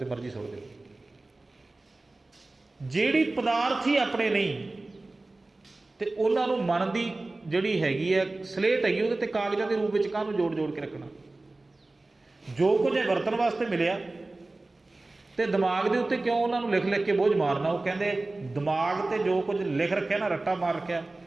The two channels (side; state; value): left; quieter; 3.1 dB